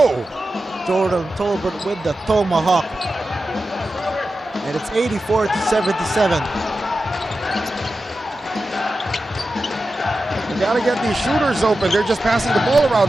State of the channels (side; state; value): both; normal; correlation 0.92